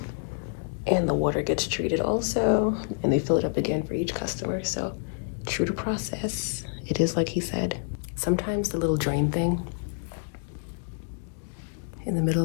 and the water gets treated also, and they fill it up again for each customer. So true to process, it is like he said. Sometimes the little drain thing in the middle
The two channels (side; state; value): right; silent; digital silence